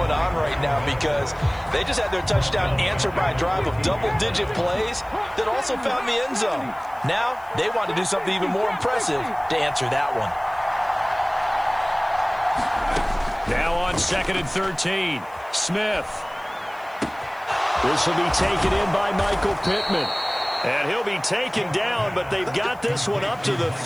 on right now, because they just had their touchdown answered by a drive of double-digit plays that also found the end zone. Now they want to do something even more impressive to answer that one. Now on 2nd and 13, Smith. This will be taken in by Michael Pittman. And he'll be taken down, but they've got this one up to the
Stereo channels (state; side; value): noise; left; hiss, 28 dB below the sound